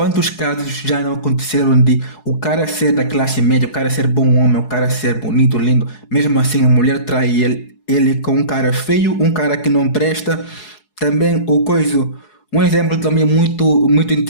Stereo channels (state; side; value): late; right; 4.7 ms